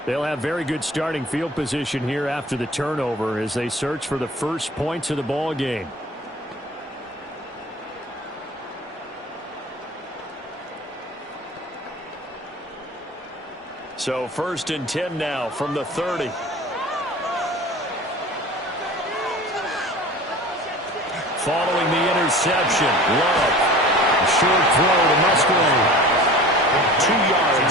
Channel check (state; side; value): normal; both; correlation 0.40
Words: They'll have very good starting field position here after the turnover as they search for the first points of the ball game. So 1st and 10 now from the 30. Following the interception, Love. A short throw to Musgrave. 2